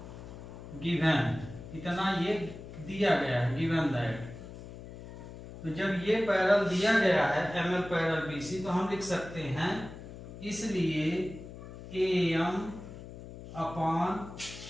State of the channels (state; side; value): noise; left; hum, 13 dB below the sound